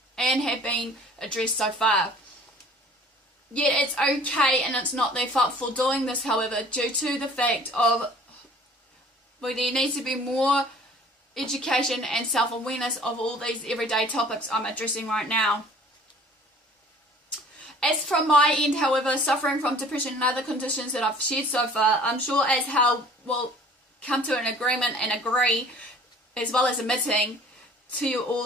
been addressed so far. Yet it's okay and it's not their fault for doing this, however, due to the fact of there needs to be more education and self-awareness of all these everyday topics I'm addressing right now. As from my end, however, suffering from depression and other conditions that I've shared so far, I'm sure as how we'll come to an agreement and agree, as well as admitting to you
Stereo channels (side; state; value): both; normal; correlation 0.50